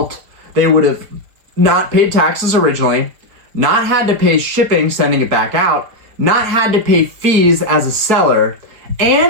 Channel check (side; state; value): left; late; 4.6 ms